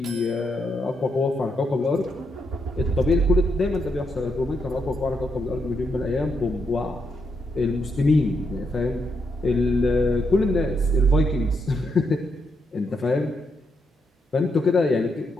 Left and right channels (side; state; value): both; normal; correlation 0.80